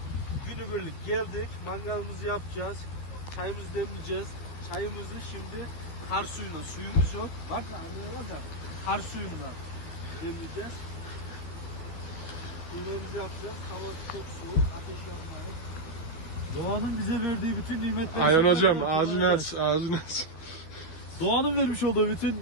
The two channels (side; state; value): right; late; 12 ms